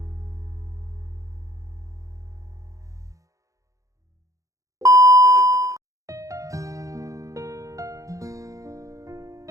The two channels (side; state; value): left; late; 0.16 ms